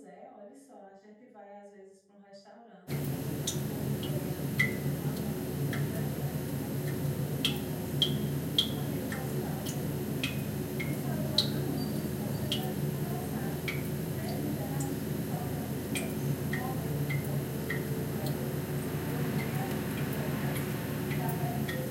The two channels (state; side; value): identical; both; correlation 1.00